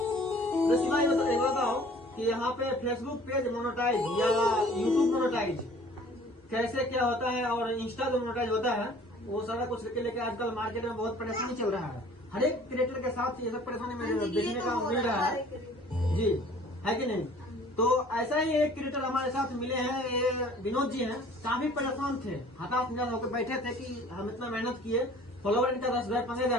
शिवाजी बताओ कि यहाँ पे फेसबुक पेज मोनेटाइज या यूट्यूब मोनेटाइज कैसे क्या होता है और इंस्टा जो मोनेटाइज होता है वो सारा कुछ लेके आजकल मार्केट में बहुत परेशानी चल रहा है। हर एक क्रिएटर के साथ ये सब परेशानी में देखने का मिल रहा है जी, है कि नहीं? तो ऐसा ही एक क्रिएटर हमारे साथ मिले हैं, ये विनोद जी हैं। काफी परेशान थे, हताश निराश होकर बैठे थे कि हम इतना मेहनत किए, फॉलोवर इनका 10,000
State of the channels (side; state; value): both; normal; correlation 0.51